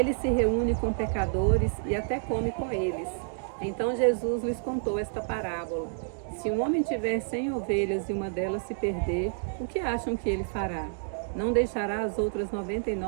se reúne com pecadores e até come com eles. Então Jesus lhes contou esta parábola: se um homem tiver 100 ovelhas e uma delas se perder, o que acham que ele fará? Não deixará as outras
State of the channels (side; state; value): left; silent; digital silence